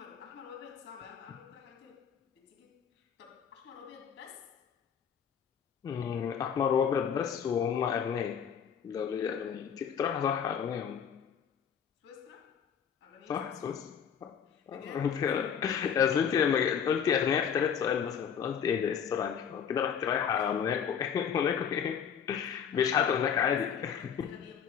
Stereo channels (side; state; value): right; quieter; 7.7 dB